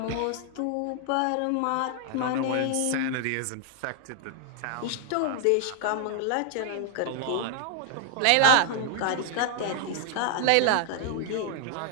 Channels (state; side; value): different; both; correlation 0.00